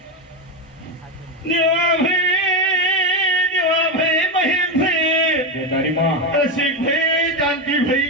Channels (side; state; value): both; normal; correlation 0.11